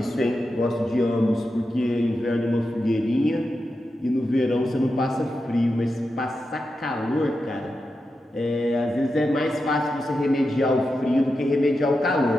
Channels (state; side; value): normal; both; correlation 0.89